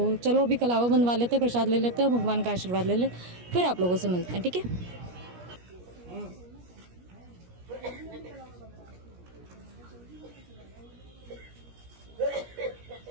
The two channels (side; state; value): left; late; 17 ms